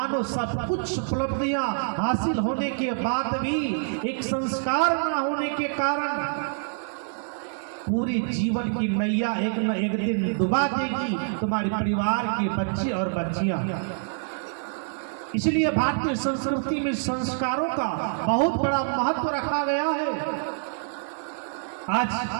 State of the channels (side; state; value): left; silent; 61 dB below the other